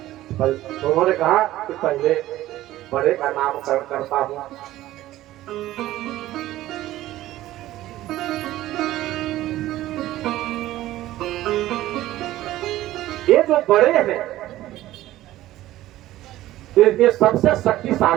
तो उन्होंने कहा कि पहले बड़े का नामकरण करता हूँ। ये जो बड़े हैं ये सबसे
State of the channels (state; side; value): quieter; left; 15.1 dB